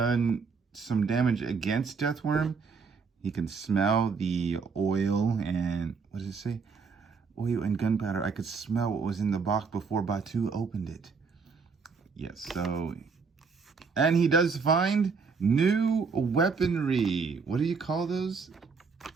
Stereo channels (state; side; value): quieter; left; 5.2 dB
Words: some damage against Deathworm. He can smell the oil and, what does it say? Oil and gunpowder. I could smell what was in the box before Batu opened it. Yes, so... And he does find new weaponry. What do you call those?